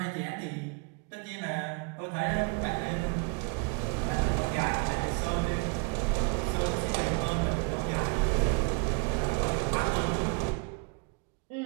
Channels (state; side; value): quieter; left; 33.2 dB